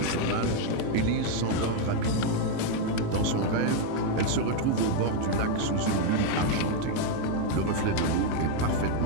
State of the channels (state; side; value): different; both; correlation 0.01